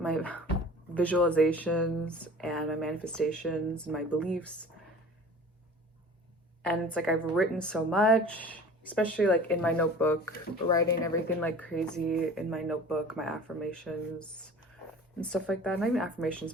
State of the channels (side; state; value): both; normal; correlation 0.43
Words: visualizations and my manifestations and my beliefs. And it's like I've written so much, especially like in my notebook, writing everything like crazy in my notebook, my affirmations and stuff like that. Not even affirmations,